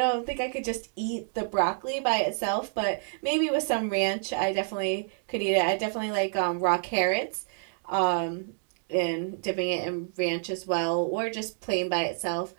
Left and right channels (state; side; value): silent; left; digital silence